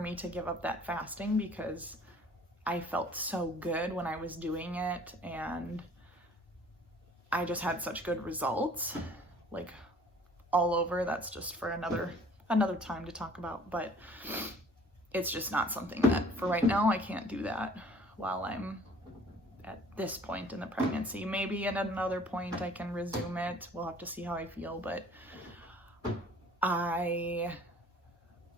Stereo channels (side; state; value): both; normal; correlation 0.52